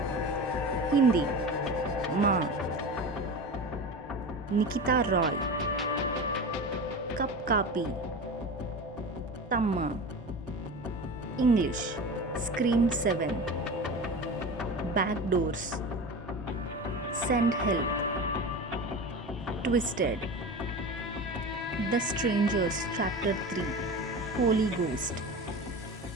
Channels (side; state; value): both; normal; correlation 0.30